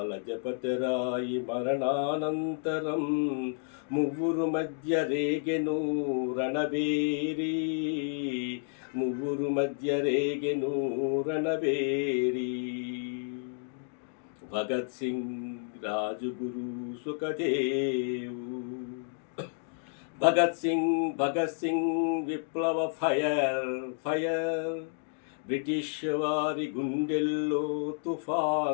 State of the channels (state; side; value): silent; right; digital silence